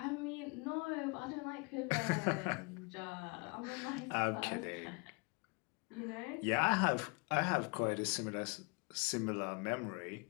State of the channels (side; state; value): right; quieter; 30.8 dB